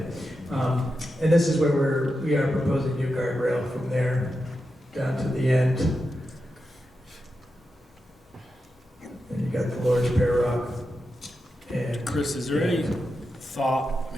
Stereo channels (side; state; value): both; normal; correlation 0.89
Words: And this is where we are proposing new guardrail from there down to the end. And you got the Lord's Pear Rock. And Chris, is there any thought, I